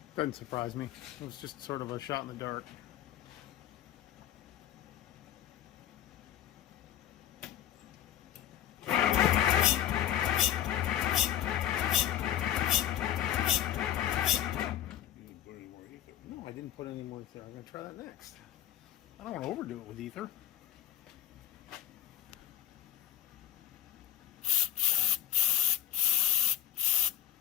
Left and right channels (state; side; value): quieter; right; 11.3 dB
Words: Doesn't surprise me. It was just sort of a shot in the dark. No, I didn't put any more ether. I'm going to try that next. I don't want to overdo it with ether.